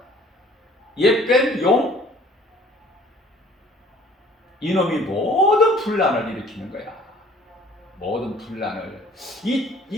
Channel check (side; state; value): both; normal; correlation 0.53